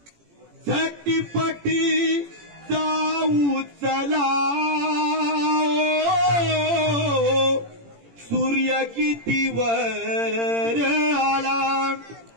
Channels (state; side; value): late; left; 18 ms